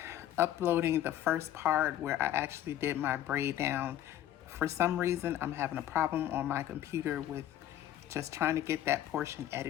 uploading the first part where I actually did my braid down. For some reason I'm having a problem on my computer with just trying to get that portion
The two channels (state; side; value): quieter; right; 12.3 dB